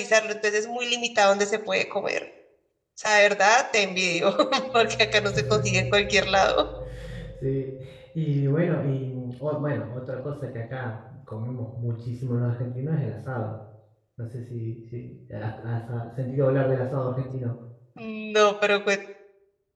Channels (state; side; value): identical; both; correlation 1.00